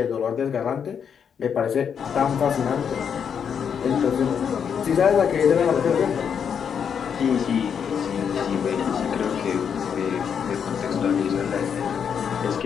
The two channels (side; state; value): right; quieter; 7.4 dB